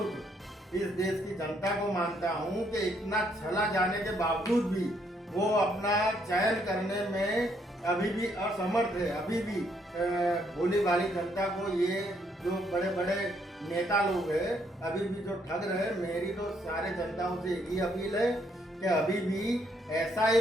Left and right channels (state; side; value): normal; both; correlation 0.71